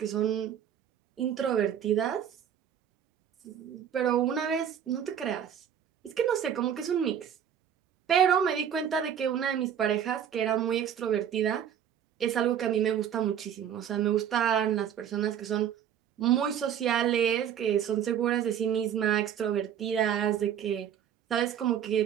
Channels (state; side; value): quieter; left; 9.2 dB